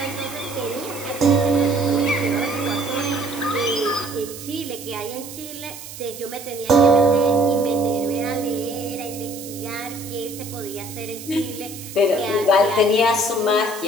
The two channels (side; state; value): right; noise; hiss, 13 dB below the sound